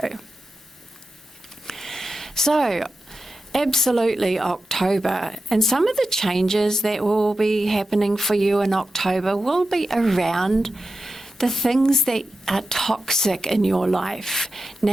So, absolutely October. And some of the changes that will be happening for you in October will be around the things that are toxic in your life.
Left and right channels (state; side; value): normal; both; correlation 0.91